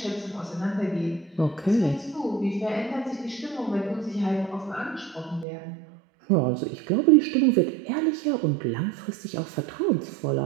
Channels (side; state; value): left; drops out; at 5.5 s